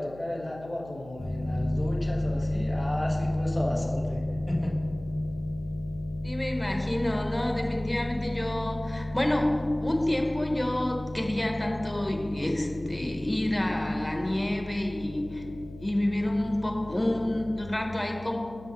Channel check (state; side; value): noise; left; hum, 18 dB below the sound